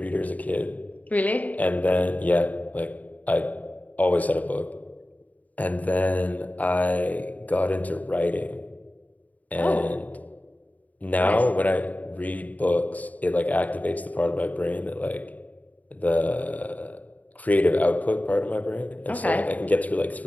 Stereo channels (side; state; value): right; late; 0.075 ms